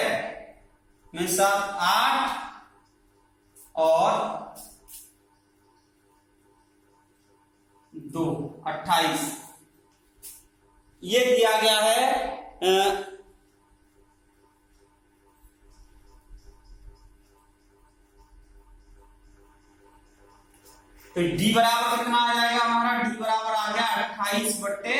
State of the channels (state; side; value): identical; both; correlation 1.00